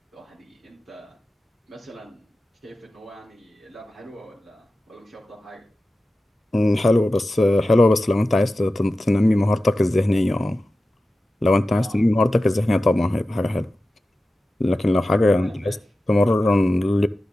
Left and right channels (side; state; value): both; normal; correlation 0.94